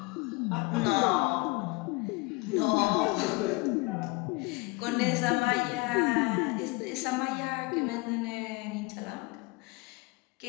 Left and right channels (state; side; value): quieter; right; 24.7 dB